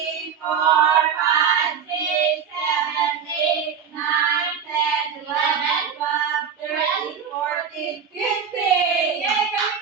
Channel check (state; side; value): quieter; left; 7.2 dB